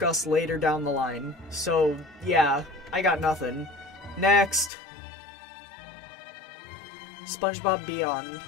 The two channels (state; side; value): drops out; right; at 4.7 s